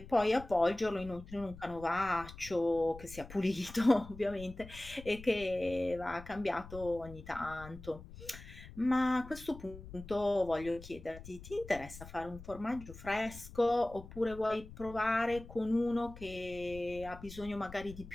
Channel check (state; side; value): noise; left; rumble, 15 dB below the sound